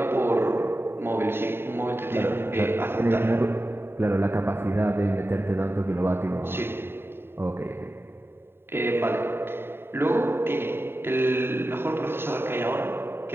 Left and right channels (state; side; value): late; left; 0.11 ms